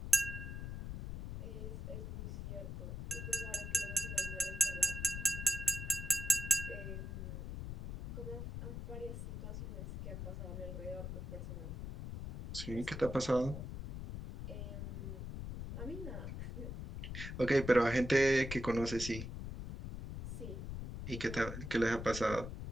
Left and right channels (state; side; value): noise; left; rumble, 6 dB below the sound